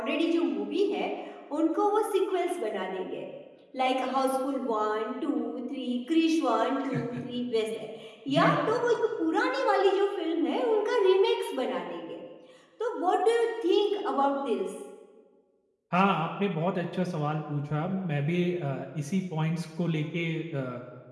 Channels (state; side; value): identical; both; correlation 1.00